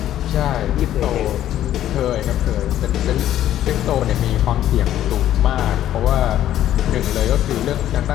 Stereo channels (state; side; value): quieter; right; 12.1 dB